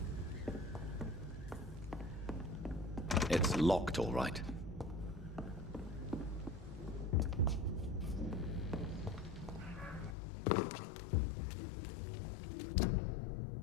It's locked, all right.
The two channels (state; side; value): drops out; right; at 10.2 s